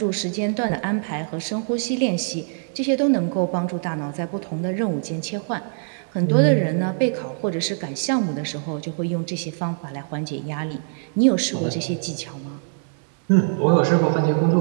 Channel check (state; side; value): silent; left; digital silence